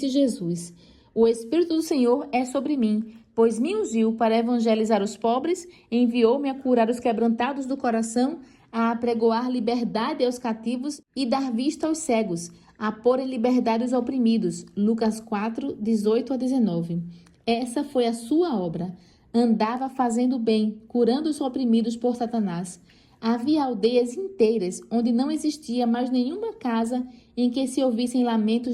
Jesus: O Espírito do Senhor é sobre mim, pois me ungiu para evangelizar os pobres, enviou-me a curar os quebrantados do coração, a apregoar liberdade aos cativos e dar vista aos cegos, a pôr em liberdade os oprimidos. Lucas 4, 18 a 19. Essa foi a sua obra. Andava fazendo bem, curando os oprimidos por Satanás. Havia aldeias inteiras onde não existia mais nenhuma casa em que se ouvissem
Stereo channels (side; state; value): both; identical; correlation 1.00